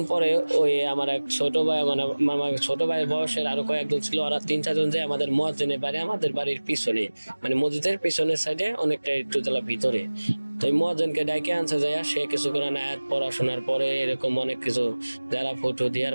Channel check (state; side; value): inverted; both; correlation -1.00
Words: পরে ওই আমার এক ছোট ভাই, মানে আমার ছোট ভাইয়ের বয়সের আরো কয়েকজন ছিল, ওরা 3-4 জন যে আমাদের মুয়াজ্জিনের বাড়ি আমাদের বাড়ির পিছনে, মানে মসজিদের পিছনের সাইডে অনেকটা একটু জেলা ভিতরে। তো ওই মুয়াজ্জিনকে ডাইকে আনছে যায়, সে কিছু করে আয়াত পড়াশোনার পরে এরকম অনেক কিছু যারা ফটো